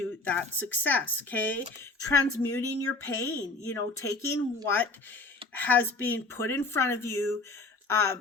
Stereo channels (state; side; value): quieter; right; 3.3 dB